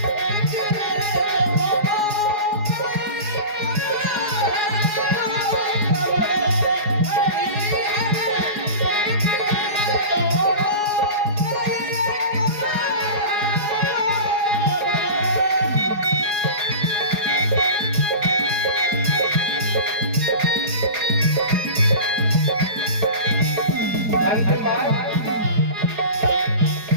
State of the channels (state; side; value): late; left; 4.8 ms